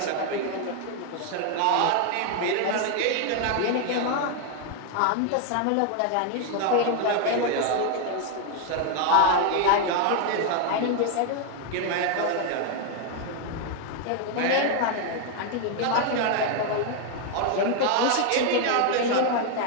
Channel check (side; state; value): both; different; correlation 0.01